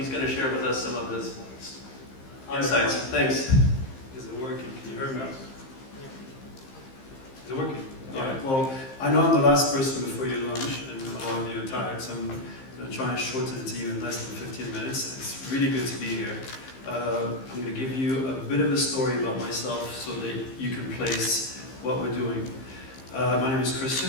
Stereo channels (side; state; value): right; late; 15 ms